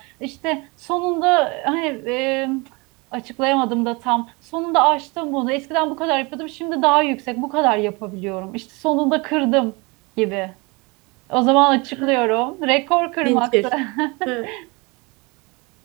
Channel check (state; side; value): quieter; left; 27.3 dB